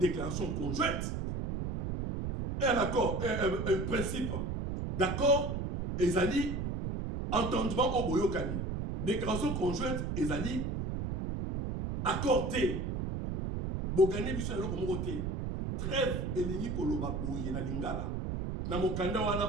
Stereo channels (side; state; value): right; noise; rumble, 2 dB below the sound